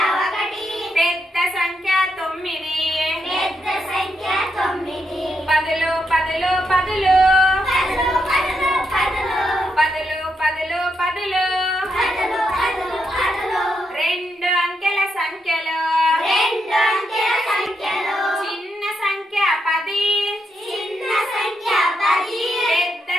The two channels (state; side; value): normal; both; correlation 0.81